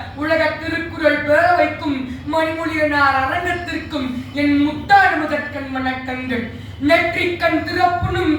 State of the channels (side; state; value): both; identical; correlation 1.00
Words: உலக திருக்குறள் பேரவைக்கும் மணிமொழியனார் அரங்கத்திற்கும் என் முத்தாடு முதற்கண் வணக்கங்கள். நெற்றிக்கண் திறப்புனும்